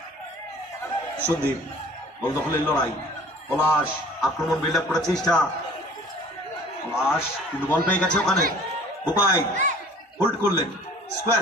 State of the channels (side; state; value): both; normal; correlation 0.49